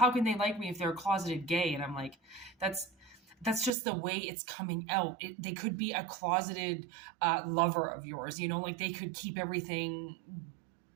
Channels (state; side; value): drops out; left; at 3.7 s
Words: can they like me if they're closeted gay? And I'm like, that's just the way it's coming out. They could be a closeted lover of yours, like they could keep everything